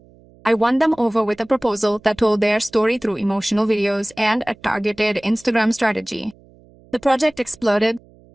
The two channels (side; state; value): right; noise; hum, 27 dB below the sound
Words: I won them over with a proposal that told their story through emotional videos and a targeted Instagram strategy. The project exploded.